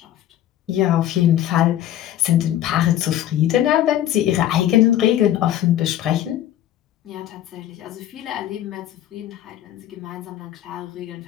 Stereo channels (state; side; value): quieter; right; 12.1 dB